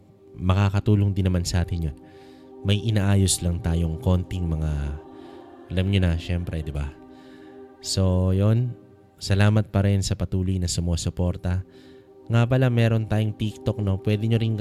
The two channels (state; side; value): identical; both; correlation 1.00